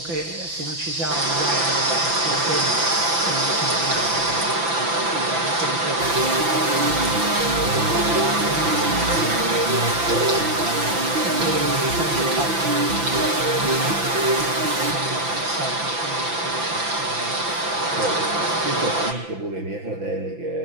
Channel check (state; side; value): late; left; 5.9 ms